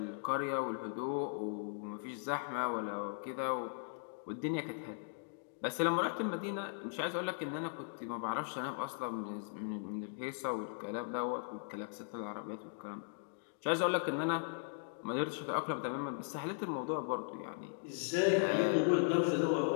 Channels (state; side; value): silent; right; digital silence